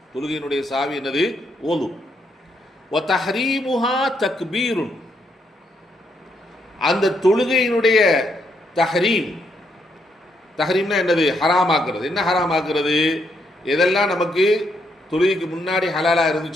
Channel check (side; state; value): both; normal; correlation 0.77